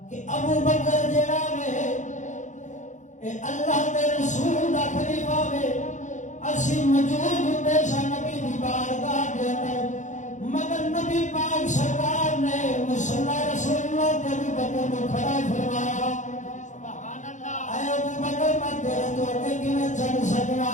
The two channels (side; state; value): right; late; 0.35 ms